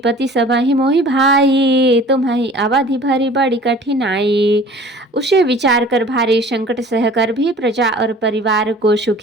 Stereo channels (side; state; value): both; normal; correlation 0.46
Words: सबहि मोहि भाई, तुम्हि अवधि भरी बड़ी कठिनाई। उसे विचार कर भारी संकट सहकर भी प्रजा और परिवार को